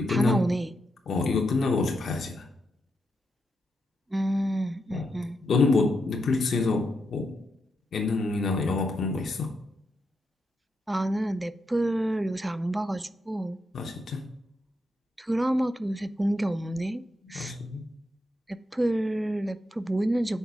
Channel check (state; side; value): normal; both; correlation 0.83